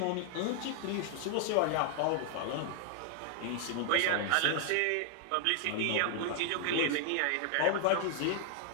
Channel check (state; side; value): different; both; correlation -0.01